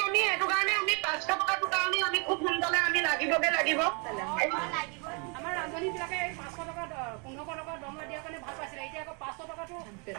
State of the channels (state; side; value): quieter; left; 34.3 dB